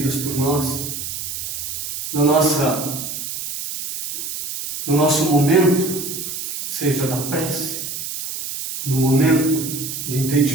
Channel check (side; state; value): right; noise; hiss, 6 dB below the sound